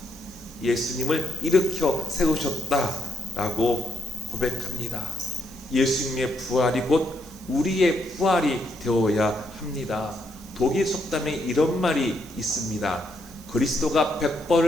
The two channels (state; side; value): noise; right; hiss, 22 dB below the sound